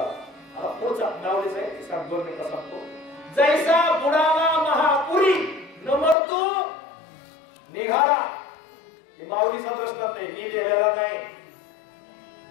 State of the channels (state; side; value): drops out; right; at 6.2 s